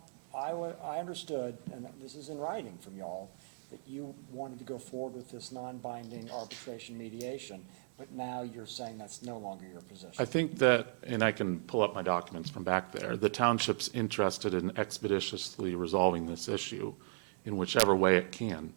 I understood, and this is in writing from y'all, that you wanted to go forward with this non-binding arbitration mediation, but now you're saying that's no longer your position. I think that, and I can pull up my documents from back there, the township's interested in expeditiously resolving this issue in whichever way it can,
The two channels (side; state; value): left; silent; digital silence